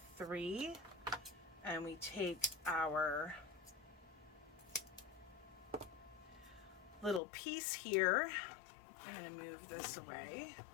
3, and we take our little piece here. I'm going to move this away.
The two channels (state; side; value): drops out; right; at 7.2 s